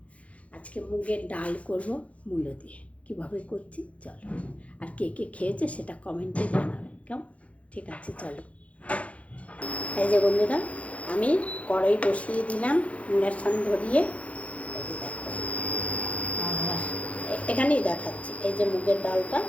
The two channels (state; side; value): late; right; 0.065 ms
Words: আজকে মুগের ডাল করব মূলো দিয়ে। কীভাবে করছি চলো, আর কে কে খেয়েছে সেটা কমেন্টে জানাবে। কেমন? ঠিক আছে, চলো। এই যে বন্ধুরা, আমি কড়াই বসিয়ে দিলাম ইন্ডাকশান ধরিয়ে। এই যে দেখো, আর এখানেই দেখাচ্ছি। এই যে মুগের ডালটা